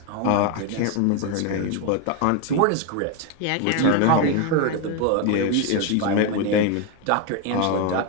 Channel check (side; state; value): both; different; correlation 0.02